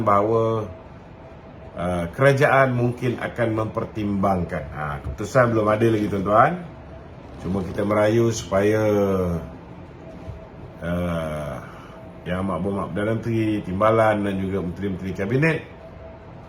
bahawa kerajaan mungkin akan mempertimbangkan. Keputusan belum ada lagi tuan-tuan. Cuma kita merayu supaya Yang Amat Berhormat Perdana Menteri, Timbalan dan juga Menteri-Menteri Kabinet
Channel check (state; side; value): identical; both; correlation 1.00